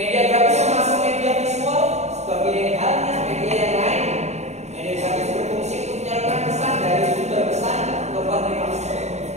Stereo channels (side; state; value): left; late; 0.32 ms